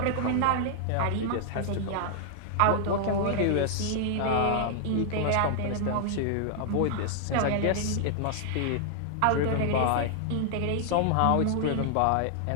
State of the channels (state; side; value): different; both; correlation -0.01